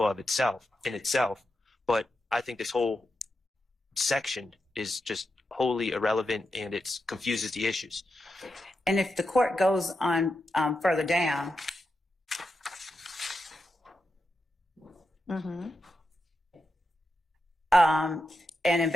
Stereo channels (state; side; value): normal; both; correlation 0.87